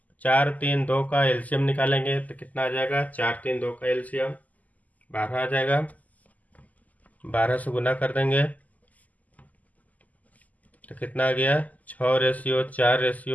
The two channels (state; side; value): late; right; 0.077 ms